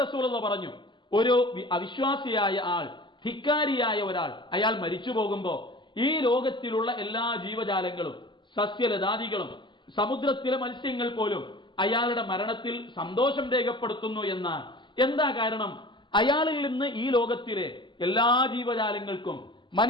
റസൂലുള്ളാഹി പറഞ്ഞു. ഒരു അവിശ്വാസിയായ ആൾ, ധിക്കാരിയായ ഒരാൾ, അയാൾ മരിച്ചു പോകുമ്പോ ഈ ലോകത്തിലുള്ള എല്ലാ ജീവജാലങ്ങളും സസ്യലതാദികളും സമുദ്രത്തിലെ മത്സ്യങ്ങൾ പോലും അയാളുടെ മരണത്തിൽ സന്തോഷം രേഖപ്പെടുത്തുന്നു എന്നാണ്. എന്താ കാരണം? അയാളിൽ നിന്ന് ഈ ലോകത്തിലെ എല്ലാ ജീവജാലങ്ങൾക്കും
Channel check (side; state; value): right; late; 0.23 ms